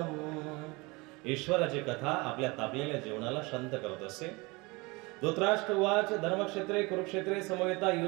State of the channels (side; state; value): left; quieter; 25.3 dB